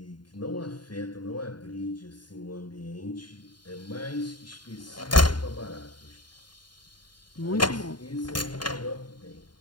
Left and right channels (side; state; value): right; late; 0.71 ms